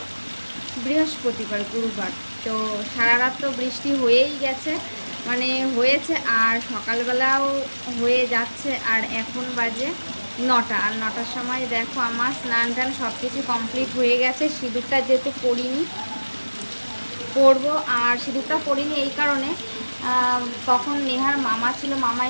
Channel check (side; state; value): both; inverted; correlation -1.00